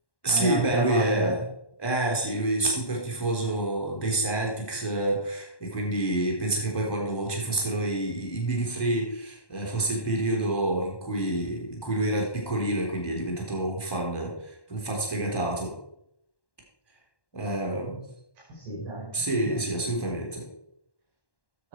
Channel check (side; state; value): right; late; 1.1 ms